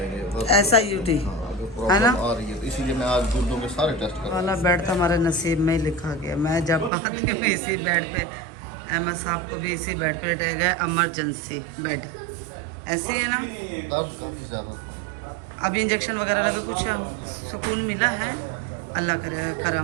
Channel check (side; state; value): left; drops out; at 6.9 s